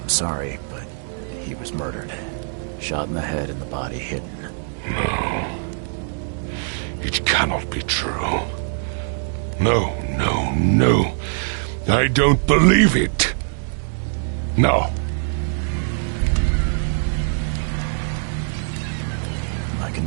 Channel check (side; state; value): left; silent; digital silence